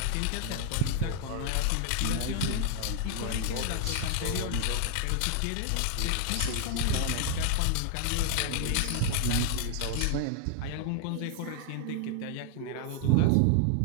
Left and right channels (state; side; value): different; both; correlation 0.00